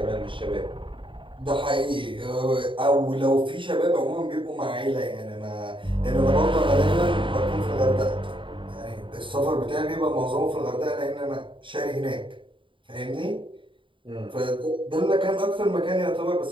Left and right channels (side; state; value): left; late; 0.25 ms